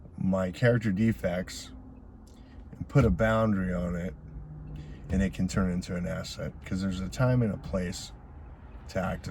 my character defects and put a boundary on it, and it can turn into an asset, because there's a time and a place to act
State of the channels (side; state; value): both; identical; correlation 1.00